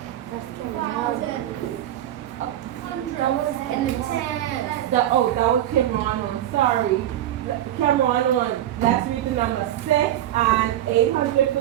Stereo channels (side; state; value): left; quieter; 12.4 dB